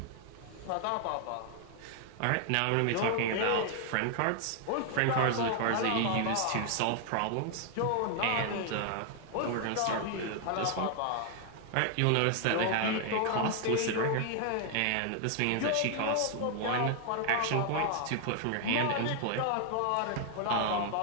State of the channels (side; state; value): both; different; correlation 0.00